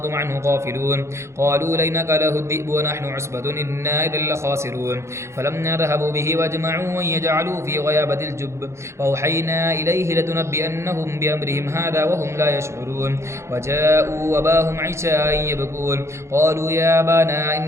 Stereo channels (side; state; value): left; late; 0.13 ms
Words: عنه غافلون قالوا لئن أكله الذئب ونحن عصبة إنا إذا لخاسرون فلما ذهبوا به واجمعوا أن يجعلوا في غيابة الجب وأوحينا إليه لتنبئنهم بأمرهم هذا وهم لا يشعرون وجاءوا أباهم عشاء يبكون قالوا يا أبانا